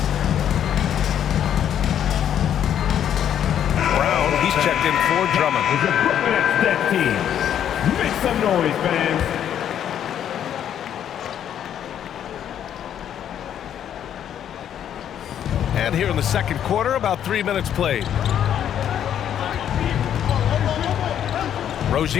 Checked in for Drummond. That team. Make some noise, fans. And here in the second quarter, about 3 minutes played.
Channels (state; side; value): quieter; right; 9.8 dB